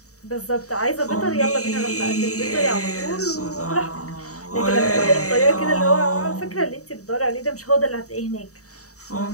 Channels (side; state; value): right; late; 0.66 ms